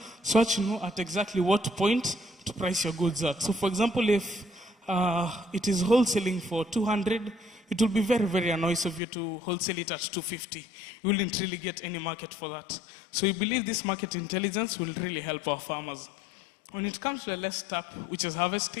so that you know at exactly what point to price your goods at. So for example, if it is wholesaling for 200, it will be very, very annoying of you to wholesale it at 250. You wouldn't really get any market for that. So we believe this market intelligence will really help our farmers. When it comes to the last step, which is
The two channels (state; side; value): drops out; right; at 9.0 s